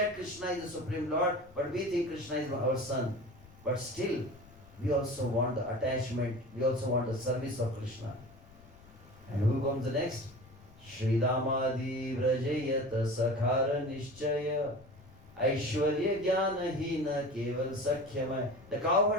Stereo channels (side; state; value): left; noise; rumble, 23 dB below the sound